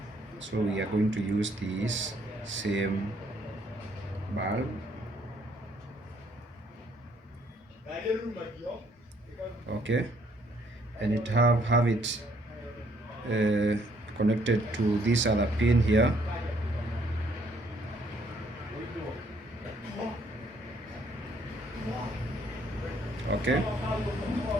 So we are going to use this same bulb. Okay, and it have it connected to this other pin here. Okay,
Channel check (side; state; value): both; normal; correlation 0.66